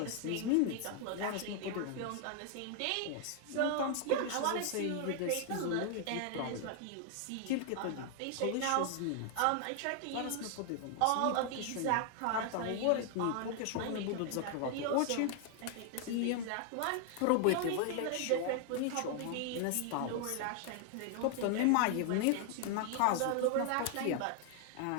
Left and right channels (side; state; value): both; different; correlation 0.00